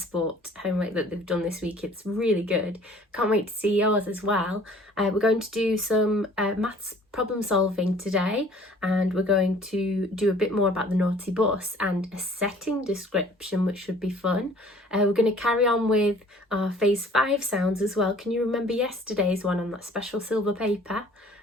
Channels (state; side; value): normal; both; correlation 0.53